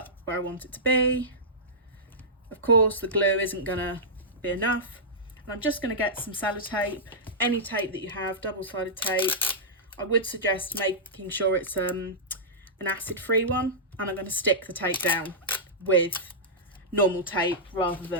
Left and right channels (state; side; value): normal; both; correlation -0.13